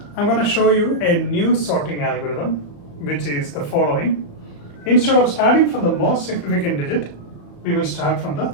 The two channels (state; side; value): late; right; 34 ms